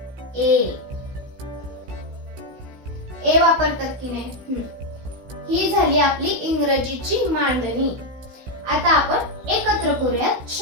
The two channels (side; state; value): left; late; 16 ms